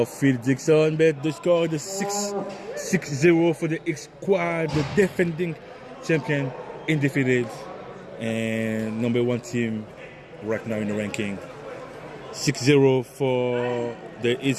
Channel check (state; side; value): identical; both; correlation 1.00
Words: Phil Dixon, but the score is 6-0 for the Hitsquad, the defending champion, undefeated, and number 1 team right now in the ranking. 6-0 for the